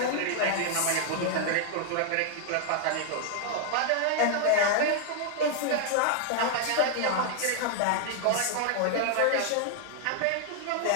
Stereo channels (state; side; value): different; both; correlation 0.00